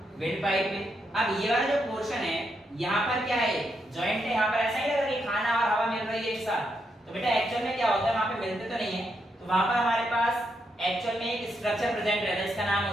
विंड पाइप में। अब ये वाला जो पोर्शन है यहाँ पर क्या है, जॉइंट है, यहाँ पर ऐसा ही लग रहा है कि खाना और हवा मिल रही है एक साथ। तो बेटा एक्चुअल में क्या होता है, वहां पे मिलते तो नहीं है, तो वहां पर हमारे पास एक्चुअल में एक स्ट्रक्चर प्रेजेंट रहता है, इसका नाम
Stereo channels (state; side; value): normal; both; correlation 0.80